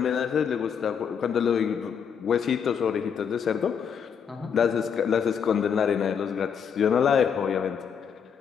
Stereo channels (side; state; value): right; quieter; 7.2 dB